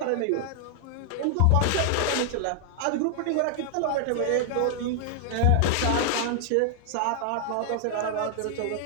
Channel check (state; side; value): different; both; correlation 0.00